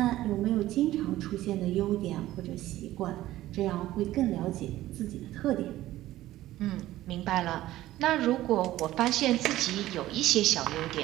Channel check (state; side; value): quieter; left; 15.2 dB